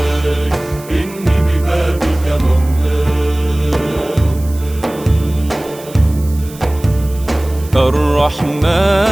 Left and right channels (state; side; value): noise; right; hiss, 19 dB below the sound